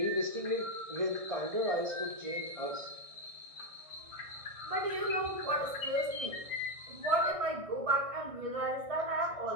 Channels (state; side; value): late; left; 1.6 ms